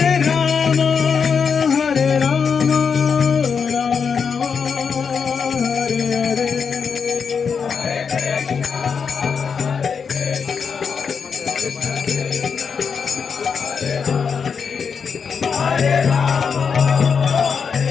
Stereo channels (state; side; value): quieter; right; 6.1 dB